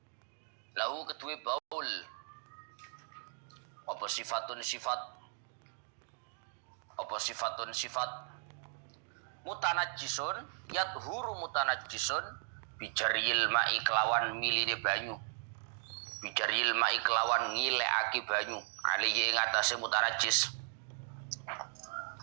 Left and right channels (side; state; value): left; silent; 53 dB below the other